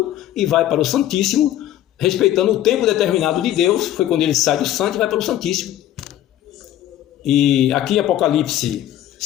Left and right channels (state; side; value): quieter; right; 12.7 dB